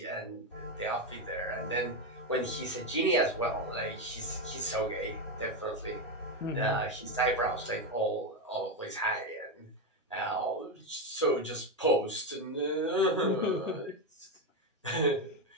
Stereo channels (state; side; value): normal; both; correlation 0.10